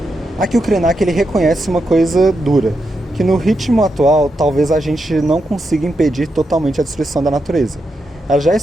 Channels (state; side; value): normal; both; correlation 0.85